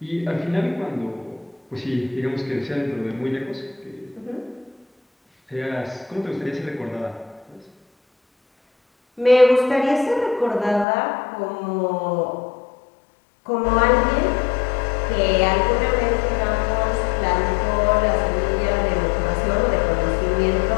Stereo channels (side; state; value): right; drops out; at 10.9 s